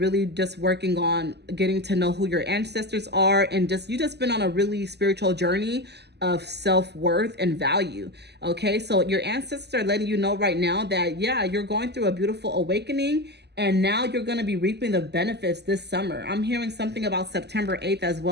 really just working on getting to know who your ancestors are, and you just been on a really spiritual journey of self-worth and value. Okay, so your ancestors are letting you know right now that, yeah, you're going through a beautiful awakening, and now you're going to be reaping the benefits this summer. I'm hearing something about September 8th as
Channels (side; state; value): left; late; 0.49 ms